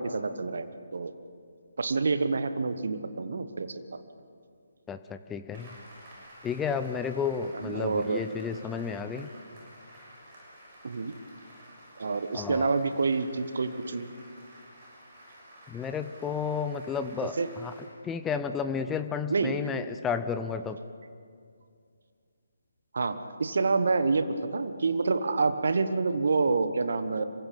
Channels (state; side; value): inverted; both; correlation -0.61